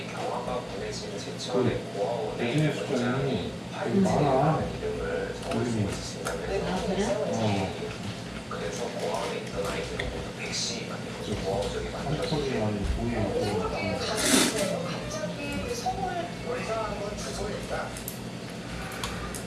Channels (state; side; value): identical; both; correlation 1.00